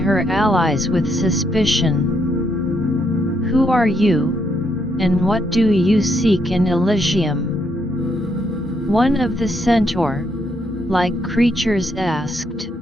her allies with suspicion. "Who are you, and what do you seek in Elysium?" one of the centaur-like creatures asked.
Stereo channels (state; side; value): normal; both; correlation 0.75